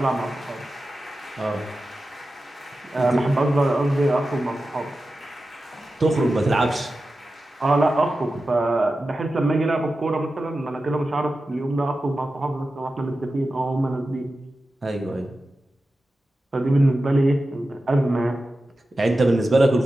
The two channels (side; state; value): both; normal; correlation 0.93